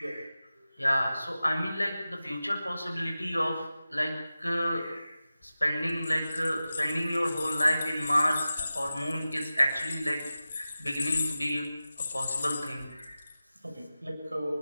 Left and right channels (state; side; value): inverted; both; correlation -0.94